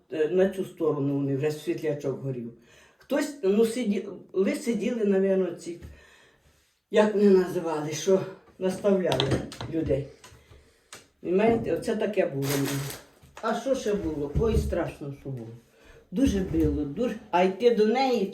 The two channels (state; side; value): identical; both; correlation 1.00